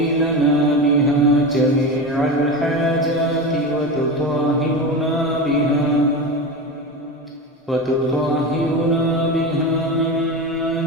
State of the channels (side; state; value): both; normal; correlation 0.23